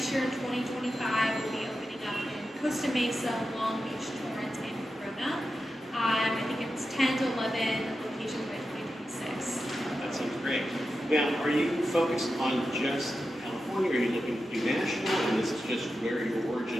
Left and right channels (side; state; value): both; normal; correlation 0.90